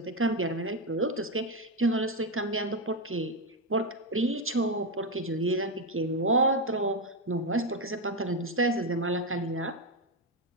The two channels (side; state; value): both; normal; correlation 0.07